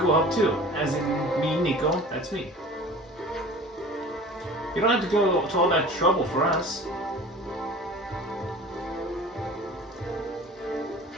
will help too. As in me, Nico, that's me. You don't have to go to all that trouble for us.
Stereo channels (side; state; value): both; normal; correlation 0.42